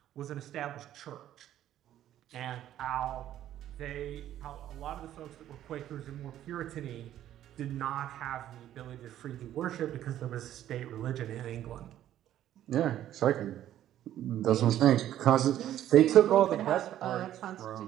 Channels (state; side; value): quieter; left; 12.1 dB